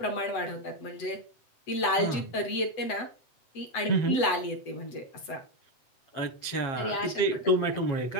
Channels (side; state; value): right; late; 7.9 ms